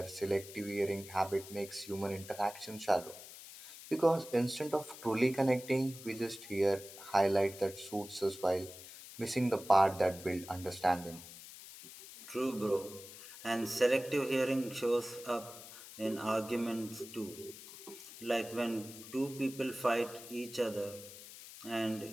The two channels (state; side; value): noise; left; hiss, 15 dB below the sound